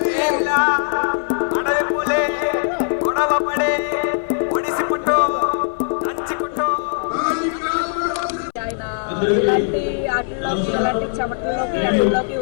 అడవి పులే గొడవ పడే ఒడిసి పుట్టు దంచి పుట్టు. ఆయన ఇలాంటి ఆటల్లోకి ఇలాంటి చెమటల్లోకి అడవుల్లోకి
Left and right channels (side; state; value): right; silent; 61 dB below the other